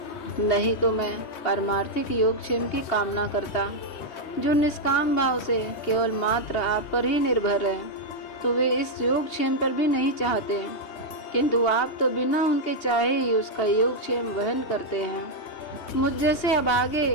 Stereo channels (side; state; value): right; late; 3.2 ms